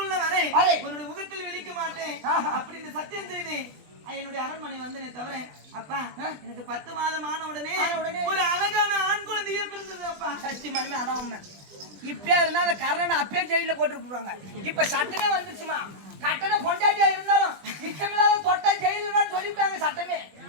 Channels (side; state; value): left; late; 20 ms